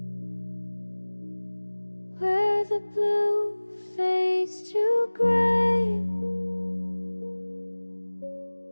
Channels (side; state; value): both; inverted; correlation -1.00